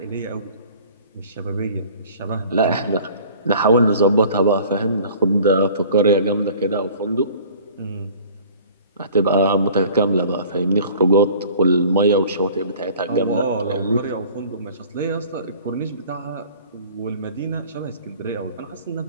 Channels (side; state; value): both; inverted; correlation -0.48